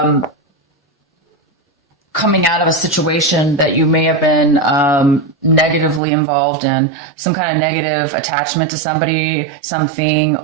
coming out of a situation that you may have been negatively involved in, some kind of negative attachment to somebody, something,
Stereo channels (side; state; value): left; drops out; at 6.0 s